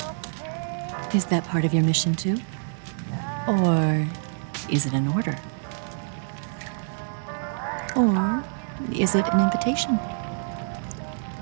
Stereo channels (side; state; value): left; silent; digital silence